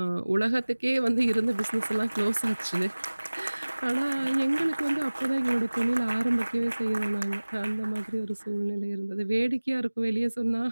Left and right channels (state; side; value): inverted; both; correlation -1.00